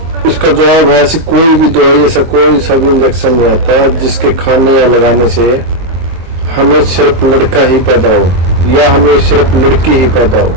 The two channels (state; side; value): late; left; 23 ms